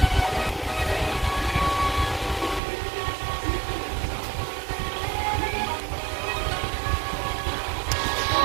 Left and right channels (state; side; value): drops out; left; at 2.6 s